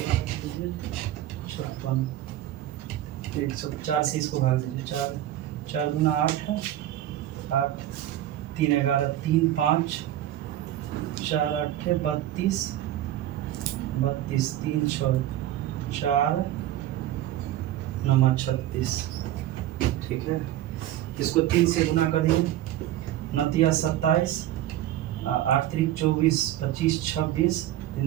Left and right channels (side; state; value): left; quieter; 13.0 dB